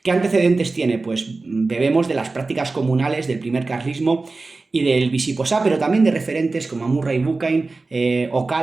¿Qué antecedentes tiene? Pues bebemos de las prácticas comunales del primer carlismo y del Visiposá, pero también de referentes como Murray Bookchin,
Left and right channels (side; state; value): left; quieter; 3.6 dB